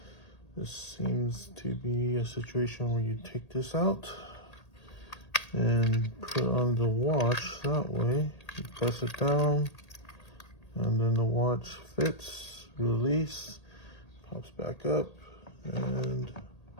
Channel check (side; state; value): right; late; 1.8 ms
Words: This seems to be a situation where you take this out and put on the watch that way. You press it down and then the watch fits, release, pops back up, and